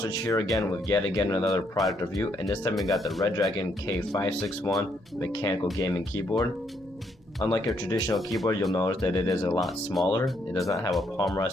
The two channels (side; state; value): both; normal; correlation 0.73